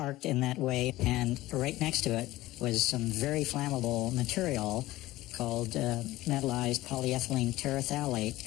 in that way, and right next to it was some very flammable material called metallized polyethylene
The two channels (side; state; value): right; quieter; 17.1 dB